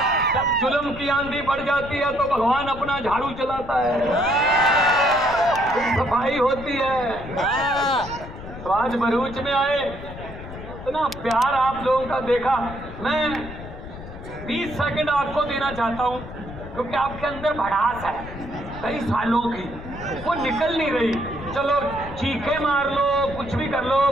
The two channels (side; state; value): left; noise; rumble, 12 dB below the sound